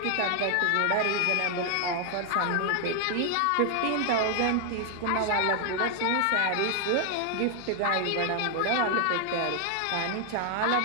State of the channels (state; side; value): different; both; correlation 0.00